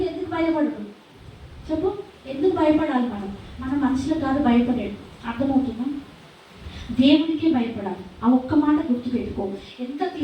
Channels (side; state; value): both; identical; correlation 1.00